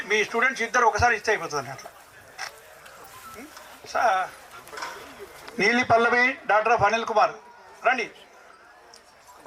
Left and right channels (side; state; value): both; identical; correlation 1.00